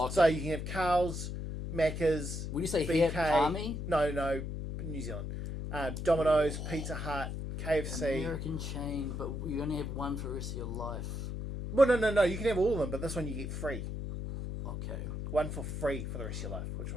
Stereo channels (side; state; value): left; noise; hum, 5 dB below the sound